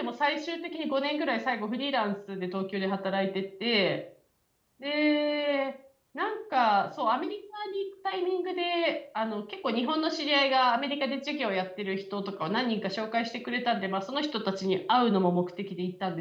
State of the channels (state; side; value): identical; both; correlation 1.00